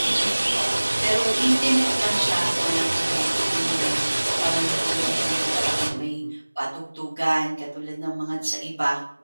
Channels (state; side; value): inverted; both; correlation -1.00